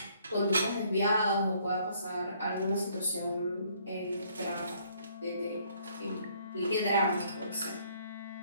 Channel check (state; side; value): inverted; both; correlation -0.65